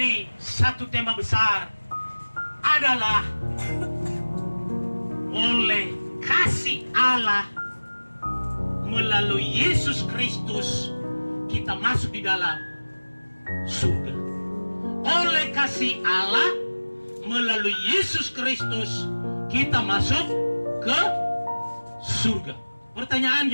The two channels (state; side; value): inverted; both; correlation -1.00